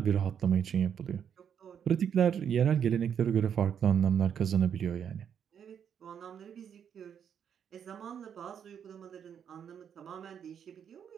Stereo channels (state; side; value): quieter; left; 8.2 dB